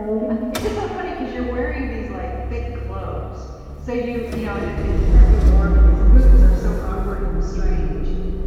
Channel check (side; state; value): both; identical; correlation 1.00